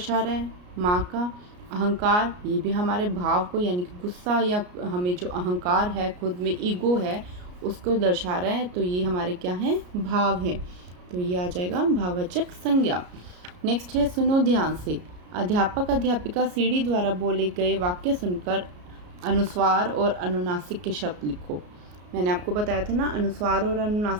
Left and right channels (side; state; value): left; late; 33 ms